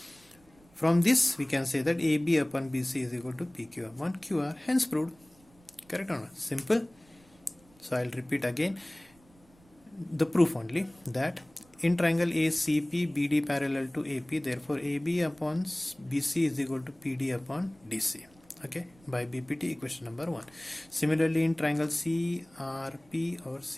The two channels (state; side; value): noise; right; rumble, 29 dB below the sound